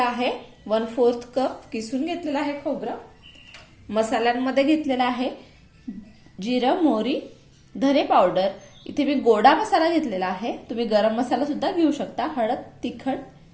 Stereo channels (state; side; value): identical; both; correlation 1.00